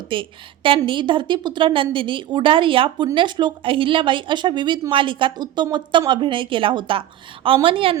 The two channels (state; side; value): quieter; left; 12.6 dB